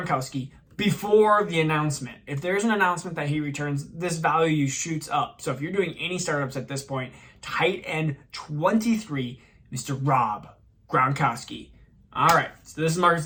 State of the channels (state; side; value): identical; both; correlation 1.00